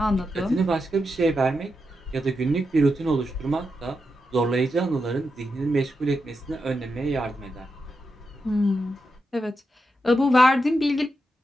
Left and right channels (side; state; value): both; normal; correlation 0.86